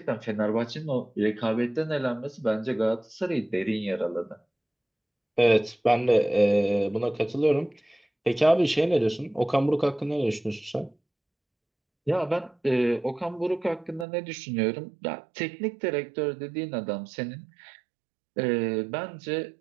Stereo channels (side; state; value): left; drops out; at 14.1 s